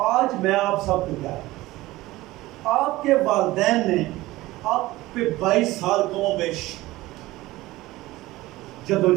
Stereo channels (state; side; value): quieter; left; 18.2 dB